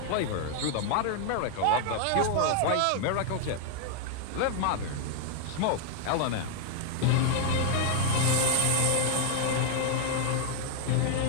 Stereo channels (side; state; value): both; different; correlation 0.00